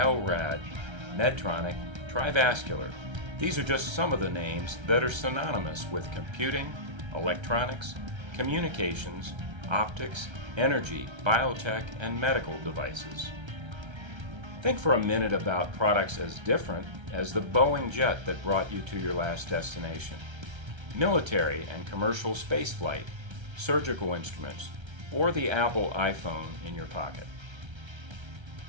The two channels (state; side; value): late; left; 1.3 ms